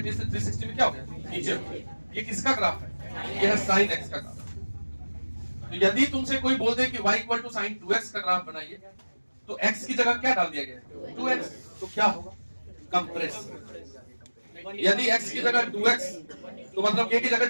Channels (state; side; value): inverted; both; correlation -1.00